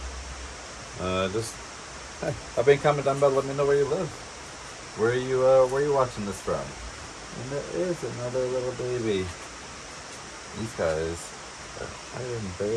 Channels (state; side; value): identical; both; correlation 1.00